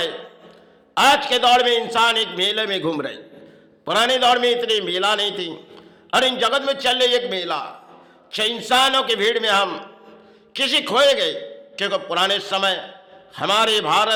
आज के दौर में इंसान एक मेले में घूम रहे। पुराने दौर में इतनी मेला नहीं थी, और इन जगत में चल रही एक मेला। इंसानों की भीड़ में हम किसी खोए गए। क्योंकि पुराने समय हमारे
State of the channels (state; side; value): identical; both; correlation 1.00